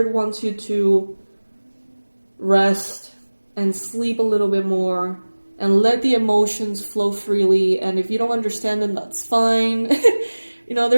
wants you to rest and sleep a little bit more and let the emotions flow freely. And if you don't understand them, that's fine.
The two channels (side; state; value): both; inverted; correlation -1.00